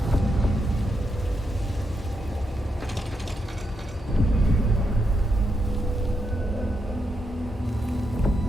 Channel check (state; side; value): normal; both; correlation 0.83